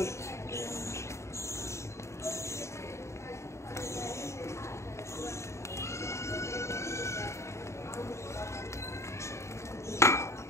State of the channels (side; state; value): right; late; 0.14 ms